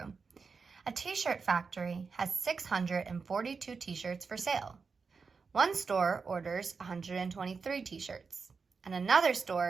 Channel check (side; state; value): left; quieter; 5.0 dB